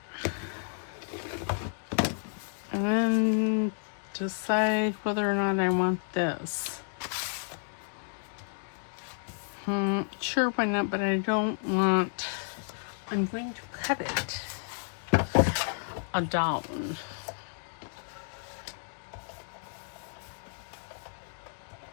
And then decide whether or not I want this. Sure, why not, but I don't want, I'm going to cut it down.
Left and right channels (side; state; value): right; silent; 57 dB below the other